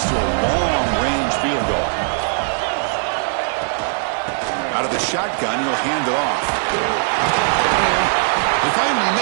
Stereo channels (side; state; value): left; silent; digital silence